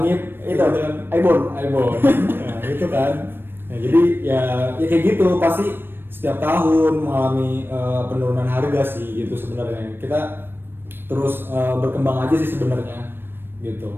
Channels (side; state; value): left; late; 0.10 ms